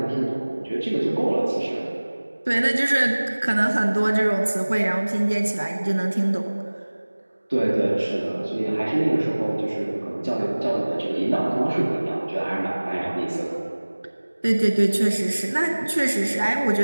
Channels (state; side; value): inverted; both; correlation -1.00